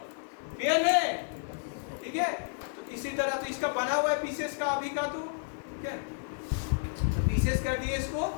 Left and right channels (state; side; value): silent; right; digital silence